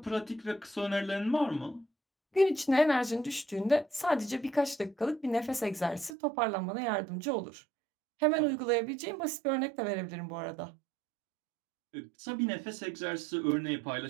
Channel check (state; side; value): drops out; left; at 6.2 s